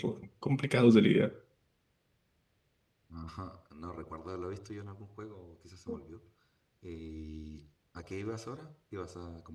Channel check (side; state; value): both; identical; correlation 1.00